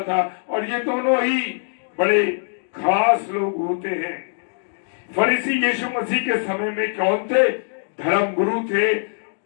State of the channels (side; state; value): right; silent; digital silence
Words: था, और ये दोनों ही बड़े खास लोग होते हैं। फरीसी यीशु मसीह के समय में कौन थे? धर्म गुरु थे,